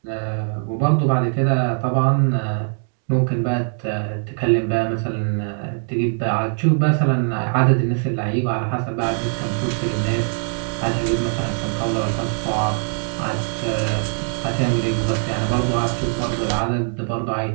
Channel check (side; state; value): left; silent; 58 dB below the other